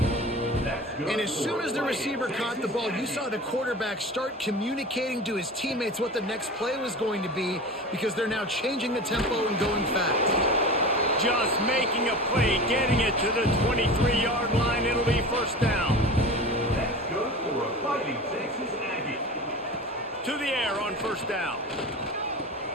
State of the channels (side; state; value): both; normal; correlation 0.33